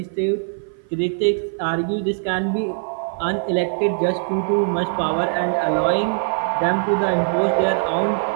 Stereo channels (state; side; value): silent; left; 58 dB below the other